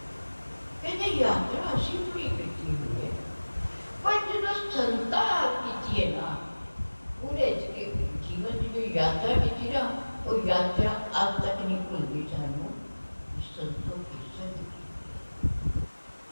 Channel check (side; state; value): both; inverted; correlation -1.00